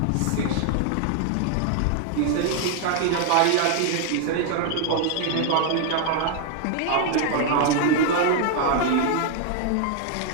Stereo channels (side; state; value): both; different; correlation 0.00